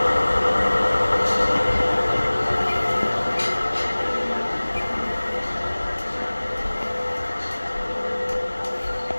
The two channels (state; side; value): inverted; both; correlation -1.00